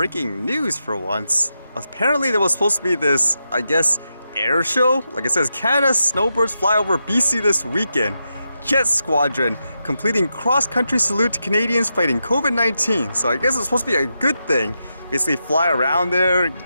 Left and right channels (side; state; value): both; inverted; correlation -0.86